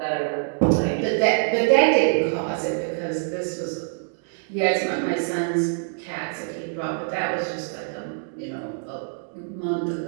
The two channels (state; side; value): silent; left; digital silence